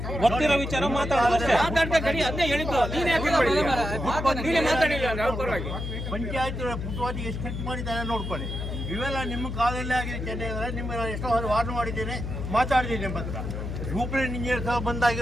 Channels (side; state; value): left; noise; hum, 5 dB below the sound